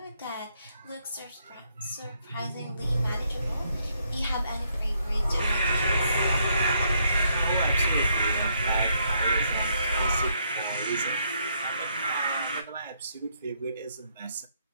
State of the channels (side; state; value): both; inverted; correlation -0.73